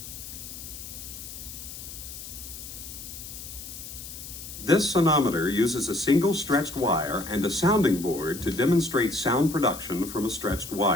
This sonometer uses a single stretched wire and a sounding board to demonstrate sound production from a stretched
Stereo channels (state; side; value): noise; left; hiss, 11 dB below the sound